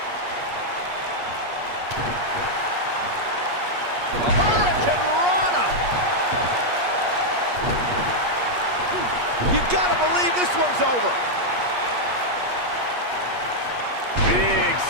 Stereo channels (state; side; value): late; left; 8.4 ms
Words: You gotta believe this one's over. Big